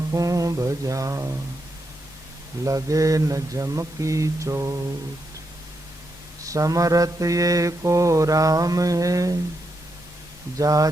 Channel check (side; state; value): both; normal; correlation 0.83